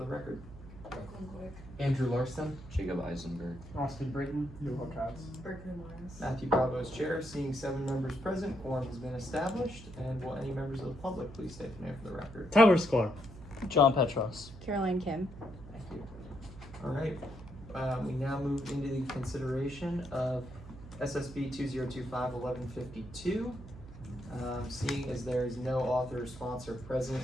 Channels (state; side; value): noise; right; hum, 15 dB below the sound